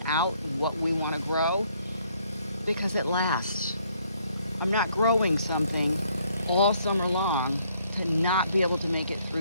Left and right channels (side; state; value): both; inverted; correlation -0.67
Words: out what we want to grow because it lasts. I'm not growing something all summer long to not be able to make it